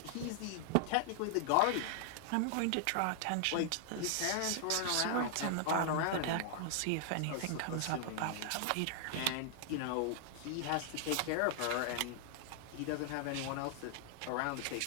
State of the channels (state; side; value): different; both; correlation 0.00